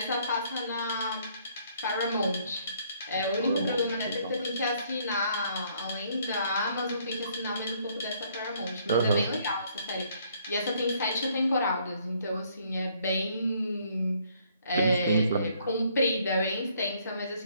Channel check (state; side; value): inverted; both; correlation -0.65